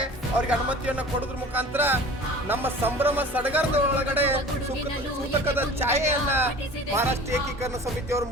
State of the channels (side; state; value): both; normal; correlation 0.42